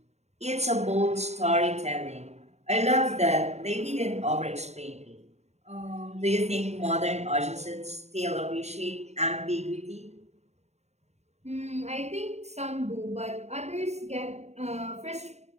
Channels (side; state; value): left; late; 0.32 ms